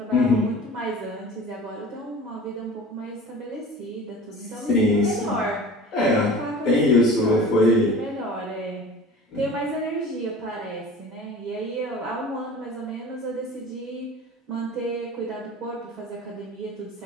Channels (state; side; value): normal; both; correlation 0.40